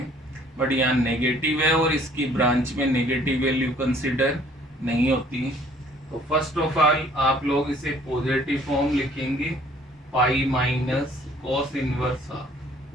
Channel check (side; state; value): both; normal; correlation 0.57